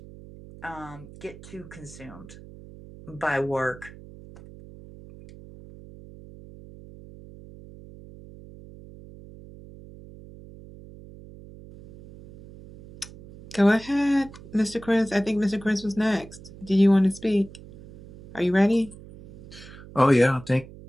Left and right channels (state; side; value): noise; right; hum, 18 dB below the sound